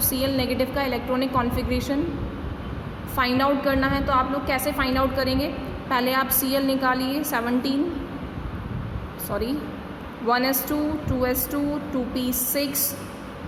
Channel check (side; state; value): both; identical; correlation 1.00